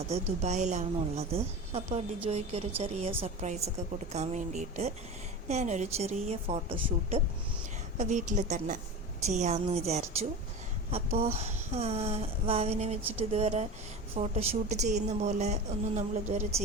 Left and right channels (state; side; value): normal; both; correlation 0.28